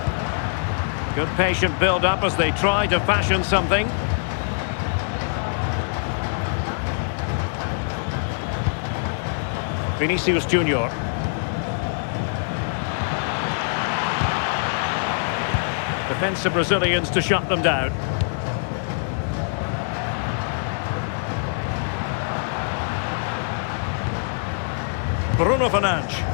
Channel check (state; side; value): silent; right; 63 dB below the other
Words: Good patient build-up as they try to fashion something. Vinicius Junior. Defensive Brazilians to shut them down. Bruno Fernandes.